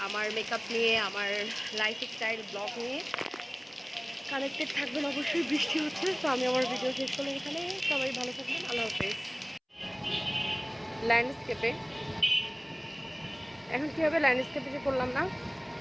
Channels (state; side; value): identical; both; correlation 1.00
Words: আমার মেকআপ নিয়ে, আমার লাইফস্টাইল ব্লগ নিয়ে কানেক্টেড থাকবেন। অবশ্যই বৃষ্টি হচ্ছে, তো আমি আমার ভিডিও শেষ করলাম এখানে। সবাই ভালো থাকবেন, আল্লাহ হাফেজ। ল্যান্ডস্কেপে এখন কী হবে, ল্যান্ডস্কেপে যে করলাম না,